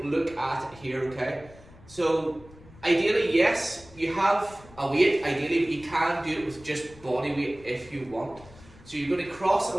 look at it here, okay? So ideally, yes, you have a weight, ideally, but you can do it with just body weight if you want. So you're going to cross a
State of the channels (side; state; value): left; noise; rumble, 22 dB below the sound